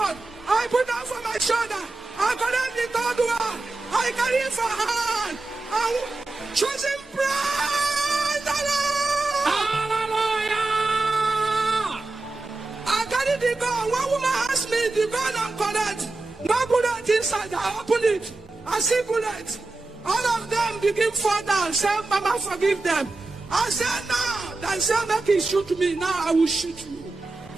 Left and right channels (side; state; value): left; quieter; 3.3 dB